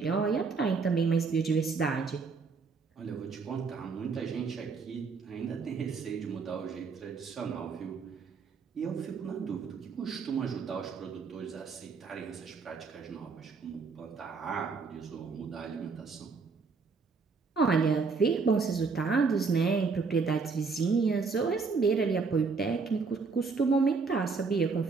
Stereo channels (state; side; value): quieter; left; 4.8 dB